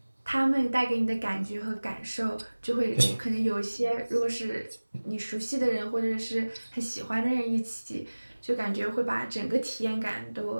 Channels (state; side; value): inverted; both; correlation -1.00